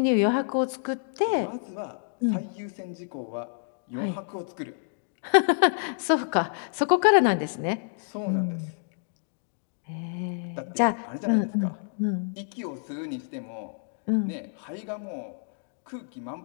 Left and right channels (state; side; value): silent; right; digital silence